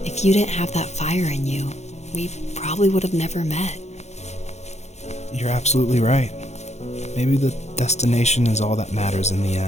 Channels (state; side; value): late; right; 0.32 ms